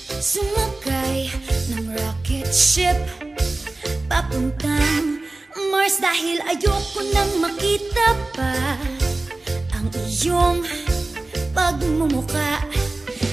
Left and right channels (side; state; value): left; quieter; 3.1 dB